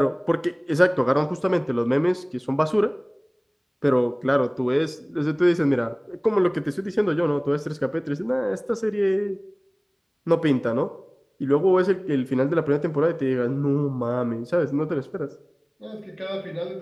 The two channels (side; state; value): both; identical; correlation 1.00